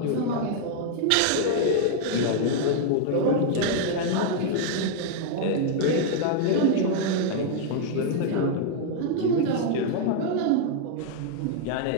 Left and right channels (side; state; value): both; different; correlation 0.00